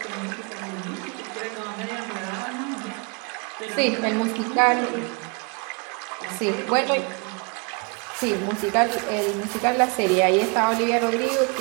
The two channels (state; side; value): quieter; left; 32.8 dB